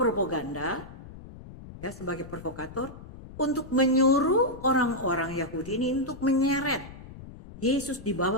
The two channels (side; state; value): left; noise; rumble, 16 dB below the sound